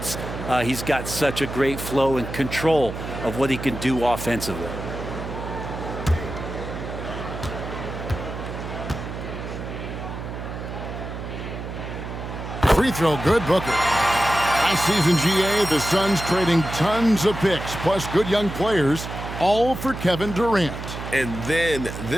He's got such a great flow and control of what he can do offensively. Free throw good, Booker. Last season, GA, the Suns trading tons of picks, plus good young players, all for Kevin Durant. And then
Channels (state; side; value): noise; right; hum, 8 dB below the sound